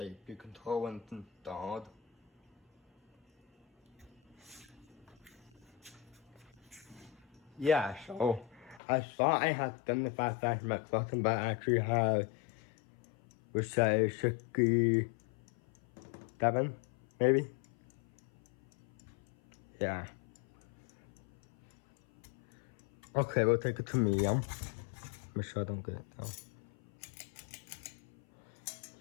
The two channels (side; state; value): right; drops out; at 8.8 s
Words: speed control when it's installed. Yeah, so I thought I had 75 facts in my collection, but I actually have, let's say, 67, maybe? Yeah. Okay, we'll take it to medium. Make sure I don't get it down.